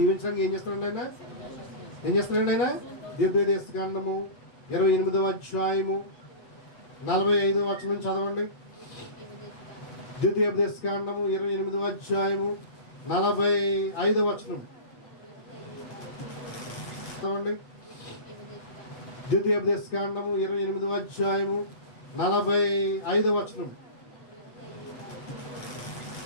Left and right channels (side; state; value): right; late; 8.1 ms